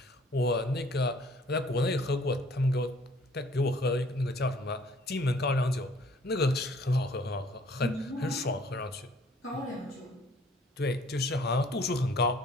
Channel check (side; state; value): both; normal; correlation 0.56